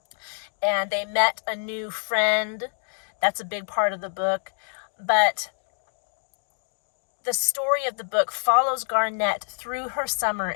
And they met a new friend. That's a big part of the book. But the story of the book follows Garnet through her summer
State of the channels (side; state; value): right; silent; 61 dB below the other